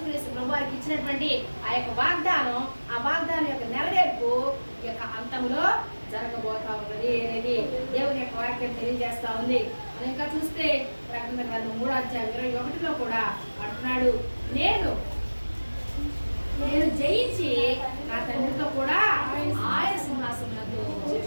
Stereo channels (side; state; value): both; inverted; correlation -1.00